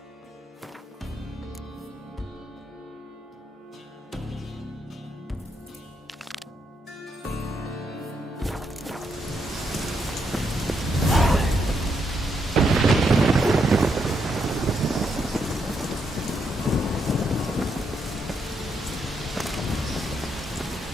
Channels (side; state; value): both; normal; correlation 0.78